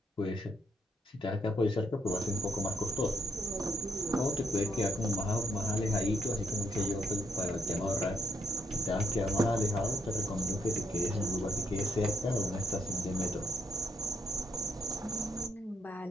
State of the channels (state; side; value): normal; both; correlation 0.76